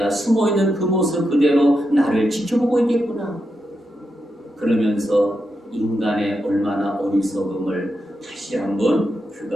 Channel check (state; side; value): normal; both; correlation 0.86